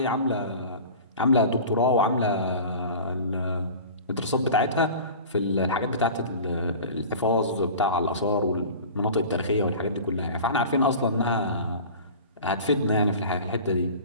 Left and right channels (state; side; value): inverted; both; correlation -0.38